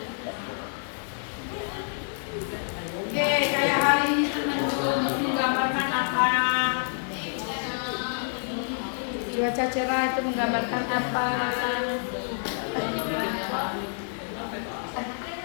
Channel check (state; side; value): silent; right; digital silence